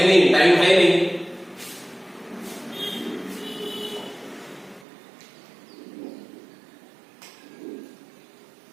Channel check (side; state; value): left; drops out; at 4.9 s